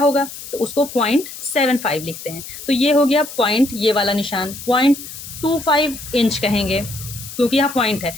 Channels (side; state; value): left; noise; hiss, 12 dB below the sound